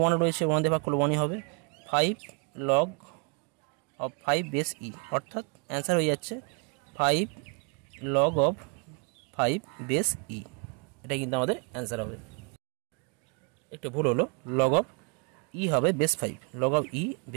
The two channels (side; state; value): left; quieter; 35.1 dB